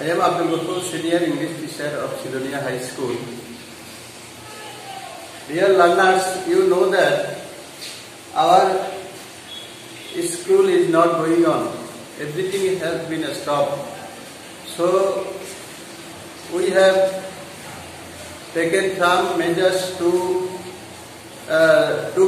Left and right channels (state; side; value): identical; both; correlation 1.00